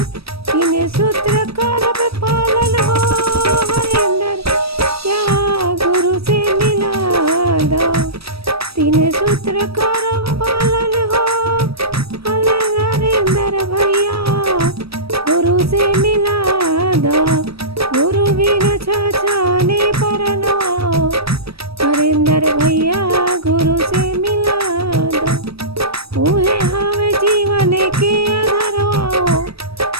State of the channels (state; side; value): late; left; 0.77 ms